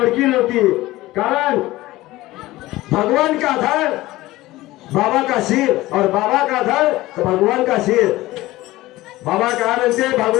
नव्हती. कारण भगवान का धड़ बाबा का सिर और बाबा का धड़ तो भगवान का सिर. बाबा कहा बनते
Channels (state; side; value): quieter; right; 17.8 dB